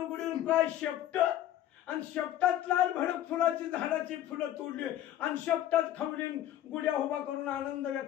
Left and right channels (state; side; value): quieter; right; 12.3 dB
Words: काय शेपट आणि शेपटात लाल भडक फुलाची झाडाची फुलं तोडली आणि शेपटात खवलीन गुड्या उभा करून आनंद